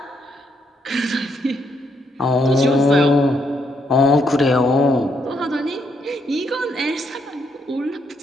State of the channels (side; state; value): both; normal; correlation 0.75